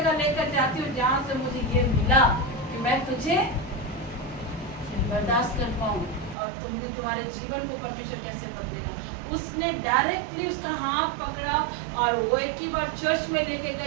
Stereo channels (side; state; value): left; drops out; at 6.4 s